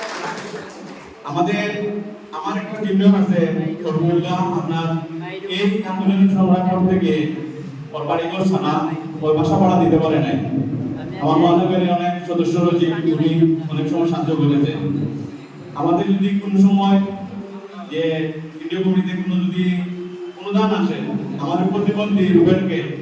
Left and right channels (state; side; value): identical; both; correlation 1.00